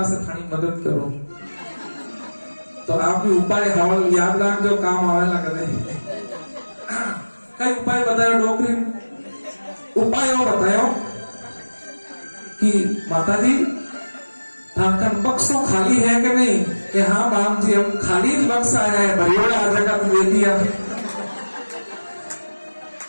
से थानी मदद करो। तो आप भी उपाय हवल याद रख जो काम आवेला कदे। कई उपाय बतायो डोकरी उपाय बतायो कि माता जी ठाकर बक्सों खाली है कि नहीं? कि हाँ बाप जी हम खाली बक्सा है, भरियोड़ा आ जगह तो दे दिया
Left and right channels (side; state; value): both; inverted; correlation -1.00